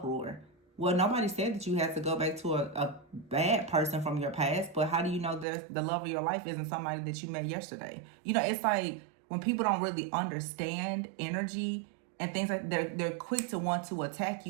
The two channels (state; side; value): drops out; left; at 5.5 s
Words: Well, nobody said that you had to go back to a bad person from your past, but how do you know the love of your life isn't somebody that you met yesterday? It's like when people don't really understand energy and things, like they're quick to want to attack